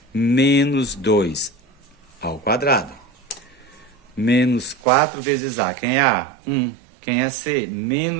Menos 2 ao quadrado. Menos 4 vezes a. Quem é a? 1. Quem é c?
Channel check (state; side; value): drops out; left; at 4.8 s